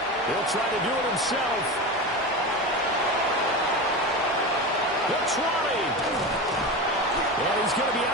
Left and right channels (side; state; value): both; normal; correlation 0.24